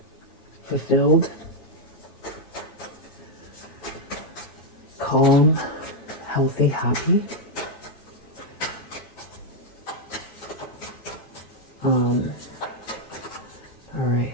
fulfilled, calm, healthy, happy. All right.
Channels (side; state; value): right; late; 9.1 ms